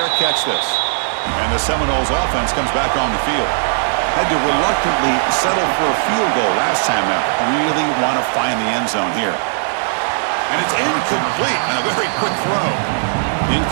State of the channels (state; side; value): silent; left; 63 dB below the other